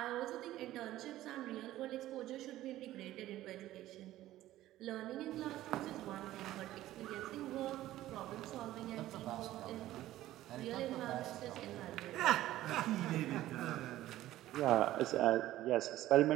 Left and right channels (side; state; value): left; quieter; 14.8 dB